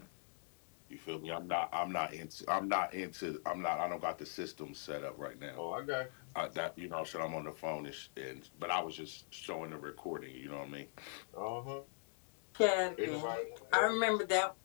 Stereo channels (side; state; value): right; silent; digital silence